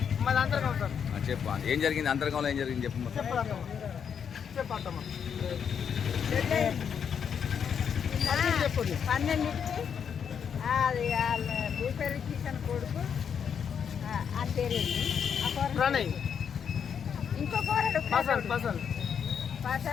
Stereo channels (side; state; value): right; quieter; 7.4 dB